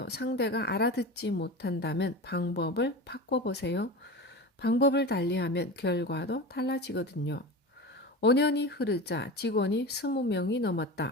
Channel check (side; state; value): both; normal; correlation 0.29